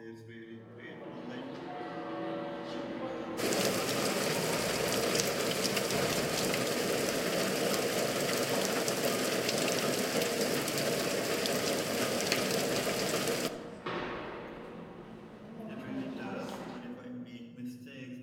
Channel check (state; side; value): identical; both; correlation 1.00